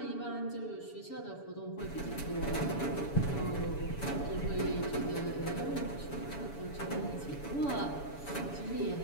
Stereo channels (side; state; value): right; late; 7.0 ms